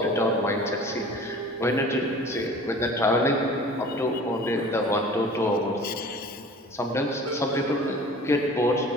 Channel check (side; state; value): both; normal; correlation 0.44